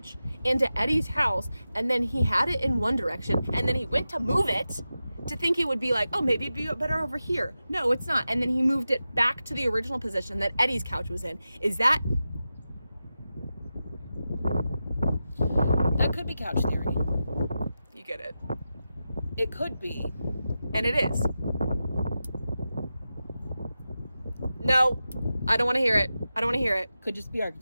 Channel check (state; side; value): inverted; both; correlation -0.92